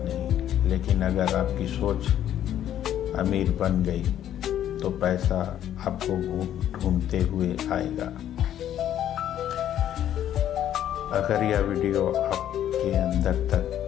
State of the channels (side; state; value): right; quieter; 11.0 dB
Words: नहीं, लेकिन अगर आपकी सोच अमीर बन गई तो पैसा आपको ढूंढते हुए आएगा। अगर यह वीडियो आपके अंदर तक